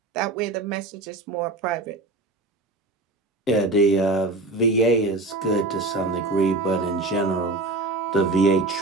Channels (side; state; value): left; quieter; 3.1 dB